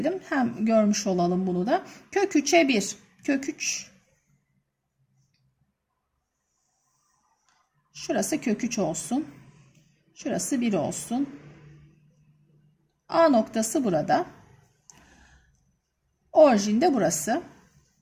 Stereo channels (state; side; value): identical; both; correlation 1.00